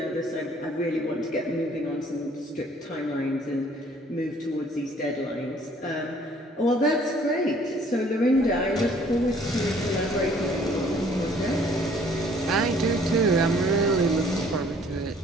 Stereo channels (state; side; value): normal; both; correlation 0.58